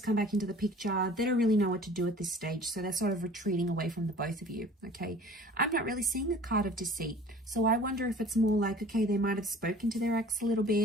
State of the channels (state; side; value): normal; both; correlation 0.47